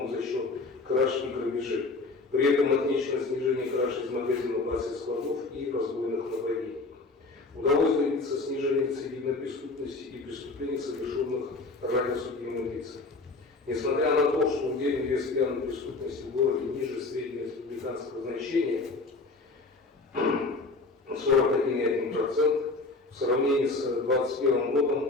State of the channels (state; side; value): quieter; right; 3.5 dB